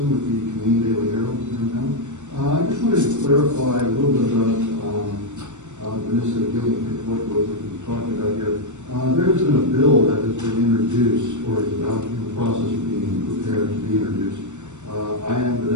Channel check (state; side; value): late; left; 0.84 ms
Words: with the Canadian Daily Herald here in town. I just wanted to clarify a little bit about Vanessa Gillian, what we're talking about here. There has been a bill that has been introduced, or is about in the process of being prepared to be introduced. I am